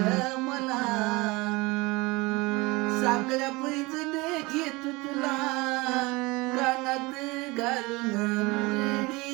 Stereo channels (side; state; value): left; quieter; 23.9 dB